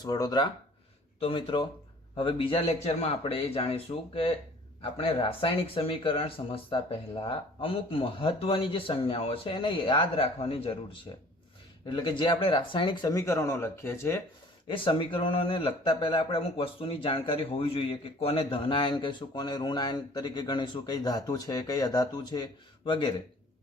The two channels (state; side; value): normal; both; correlation 0.51